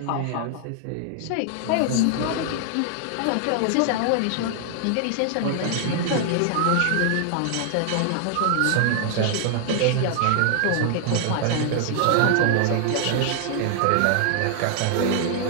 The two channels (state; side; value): different; both; correlation 0.00